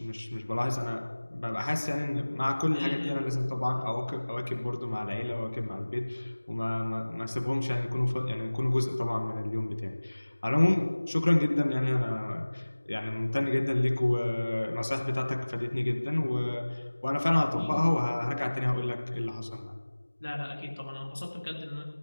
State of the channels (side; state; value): both; inverted; correlation -1.00